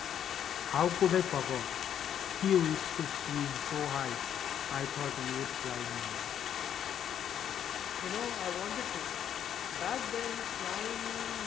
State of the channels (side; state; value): right; quieter; 9.5 dB